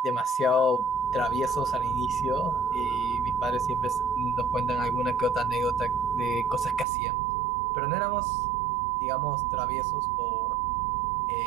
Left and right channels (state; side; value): drops out; left; at 6.9 s